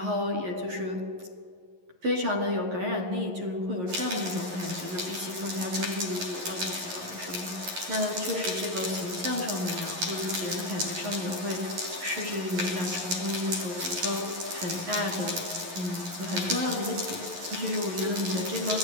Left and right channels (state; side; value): late; left; 11 ms